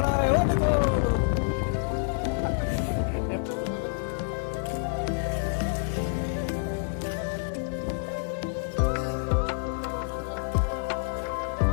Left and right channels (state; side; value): silent; right; digital silence